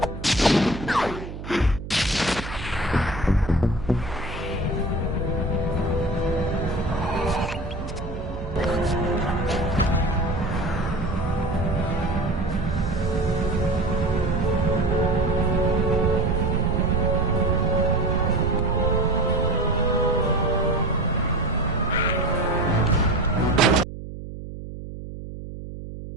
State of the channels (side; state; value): right; noise; hum, 10 dB below the sound